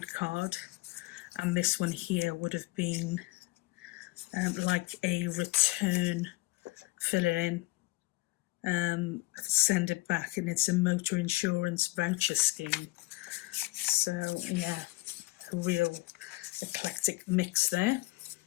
card, and this one here would have been like a return, fill it in, send it back, and it's a motor insurance voucher scheme. So yeah, a real eclectic mix there.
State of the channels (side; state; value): right; quieter; 21.4 dB